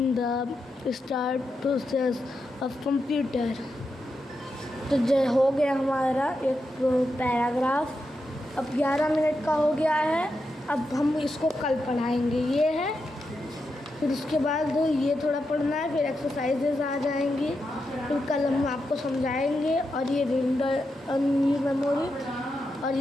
the start process of computer। तो हो गया हमारा एक paragraph. अब 11 minute का हो गया है। अब हम इसको कल पढ़ाएंगे। ये है, फिर उसके बाद ये थोड़ा पढ़ना है, फिर एक्सरसाइजेज आ जाएंगी, फिर कल हम आपको समझाएंगे। और ये रीड ओनली मेमोरी और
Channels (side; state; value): both; normal; correlation 0.86